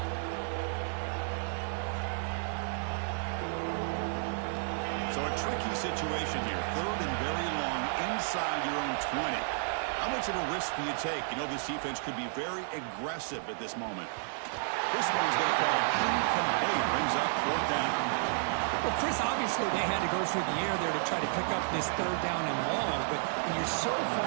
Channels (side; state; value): left; silent; digital silence